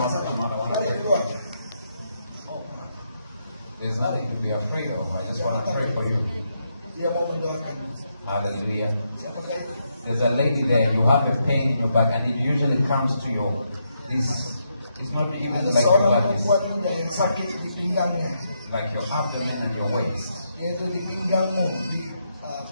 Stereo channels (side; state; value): both; inverted; correlation -0.80